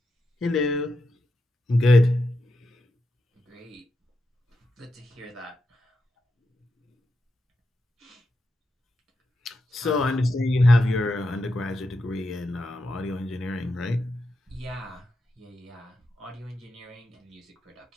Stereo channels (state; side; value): normal; both; correlation 0.86